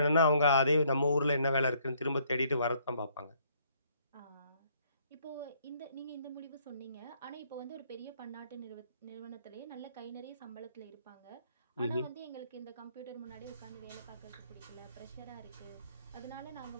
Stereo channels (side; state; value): both; inverted; correlation -0.66